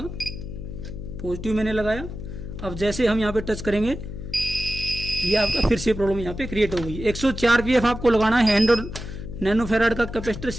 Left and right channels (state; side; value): noise; left; hum, 9 dB below the sound